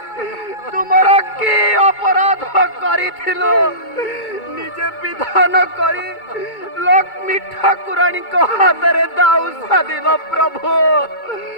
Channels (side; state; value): right; late; 2.2 ms